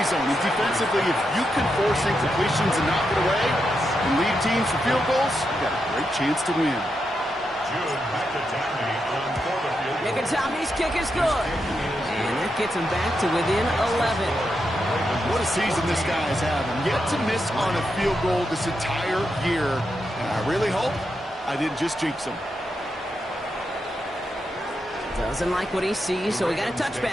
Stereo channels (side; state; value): both; normal; correlation 0.85